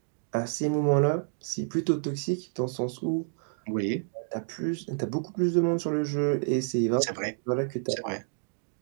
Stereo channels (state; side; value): silent; left; digital silence